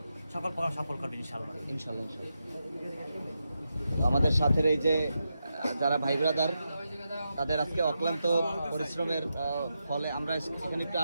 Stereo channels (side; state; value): both; inverted; correlation -0.87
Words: সকল প্রোগ্রাম সফল করবে ইনশাআল্লাহ। ইনশাল্লাহ। তো আমাদের সাথে এই যে যারা ভাই ব্রাদার, তাদের আজকে অক্লান্ত পরিশ্রমের ফলে আমরা এখানে একটু